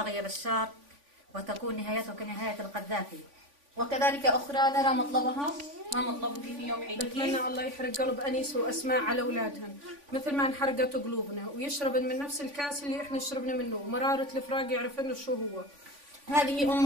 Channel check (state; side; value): late; left; 3.5 ms